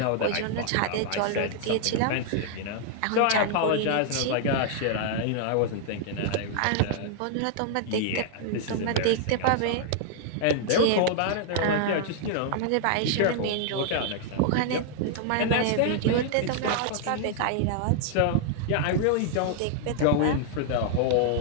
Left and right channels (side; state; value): both; different; correlation -0.01